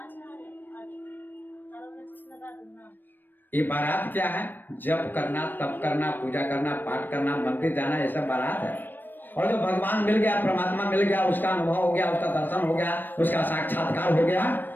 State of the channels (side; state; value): right; late; 0.092 ms